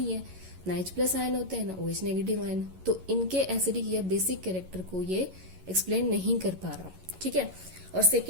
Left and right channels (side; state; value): left; late; 11 ms